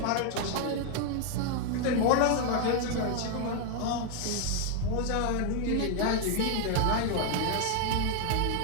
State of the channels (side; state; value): both; different; correlation 0.00